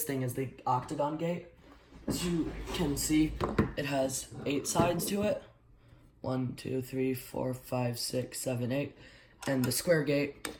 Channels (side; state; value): both; identical; correlation 1.00